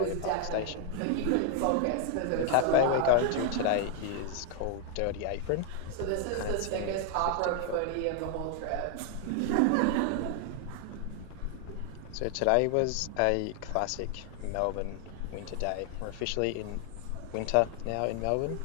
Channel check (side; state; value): both; different; correlation 0.00